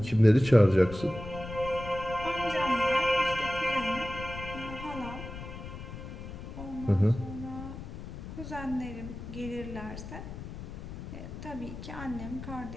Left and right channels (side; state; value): left; noise; rumble, 10 dB below the sound